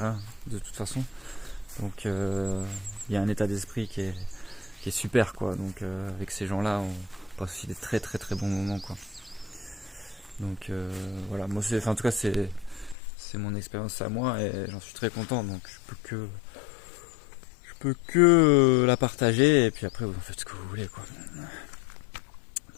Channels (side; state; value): right; drops out; at 13.0 s